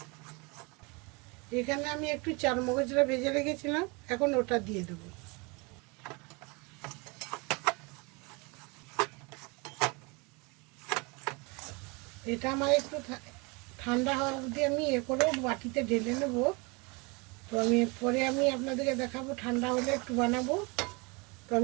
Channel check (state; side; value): quieter; left; 28.6 dB